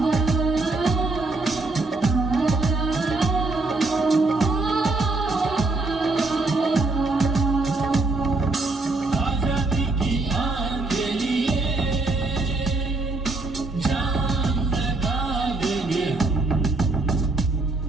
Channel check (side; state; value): left; quieter; 3.2 dB